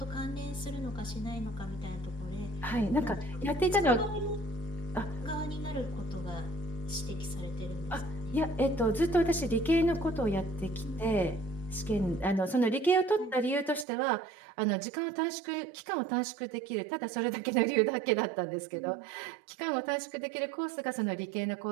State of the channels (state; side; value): drops out; left; at 13.9 s